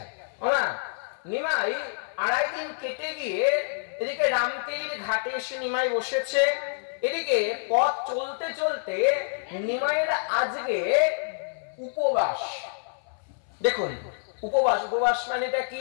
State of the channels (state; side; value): silent; right; 58 dB below the other